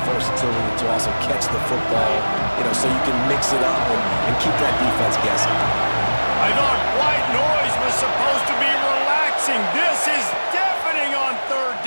versatility to also catch the football, so you can mix it up and keep that defense guessing. I thought white noise was supposed to be relaxing. This is deafening on third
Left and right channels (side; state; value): both; inverted; correlation -1.00